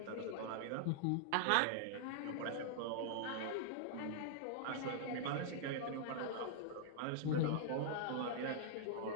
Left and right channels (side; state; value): both; different; correlation -0.01